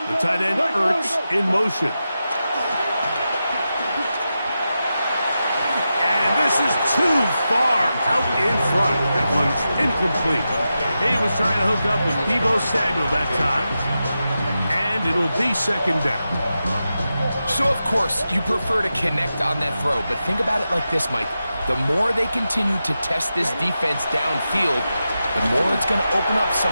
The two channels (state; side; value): inverted; both; correlation -0.90